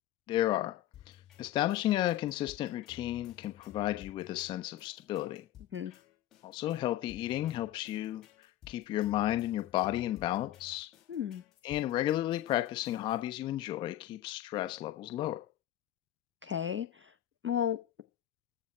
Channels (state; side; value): quieter; right; 13.1 dB